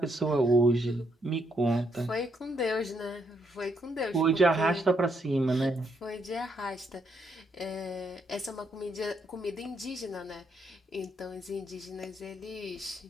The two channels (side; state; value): both; normal; correlation 0.75